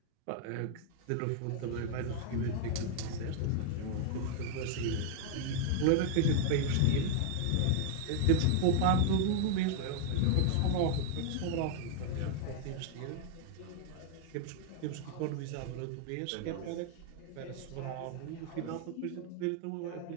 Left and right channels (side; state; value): both; different; correlation 0.00